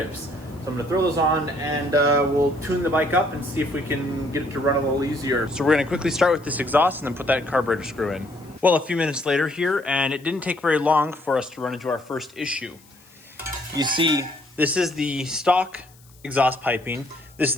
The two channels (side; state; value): left; noise; hiss, 28 dB below the sound